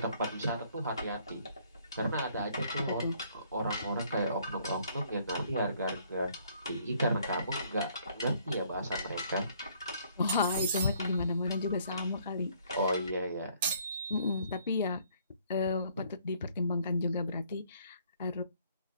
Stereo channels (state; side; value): inverted; both; correlation -0.64